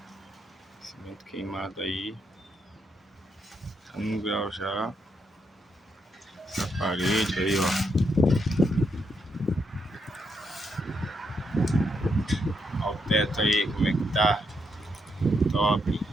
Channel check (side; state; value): both; normal; correlation 0.79